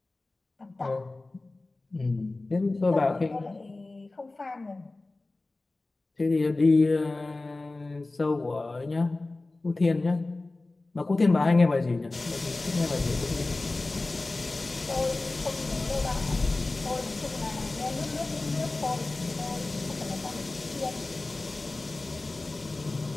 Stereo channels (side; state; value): right; quieter; 3.1 dB